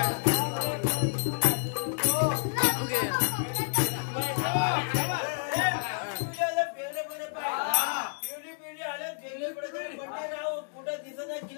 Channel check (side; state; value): right; silent; digital silence